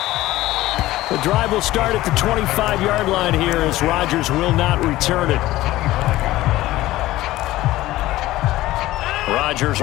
The drive will start at the 25-yard line here as Rodgers will not return it. Rodgers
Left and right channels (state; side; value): quieter; right; 16.5 dB